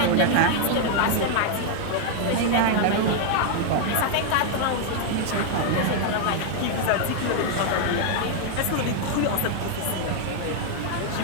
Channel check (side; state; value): both; different; correlation 0.00